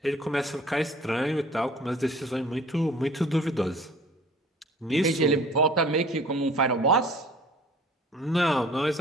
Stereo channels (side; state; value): both; normal; correlation 0.49